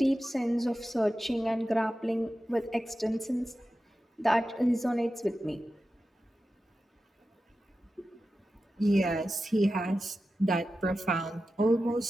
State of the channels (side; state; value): both; normal; correlation 0.93